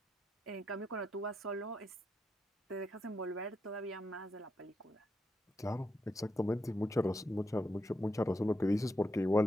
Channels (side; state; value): both; normal; correlation 0.83